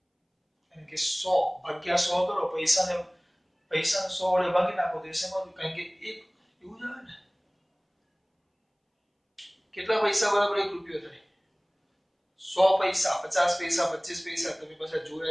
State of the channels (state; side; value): identical; both; correlation 1.00